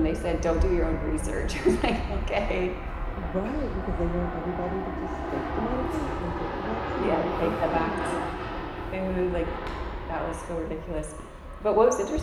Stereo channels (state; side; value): identical; both; correlation 1.00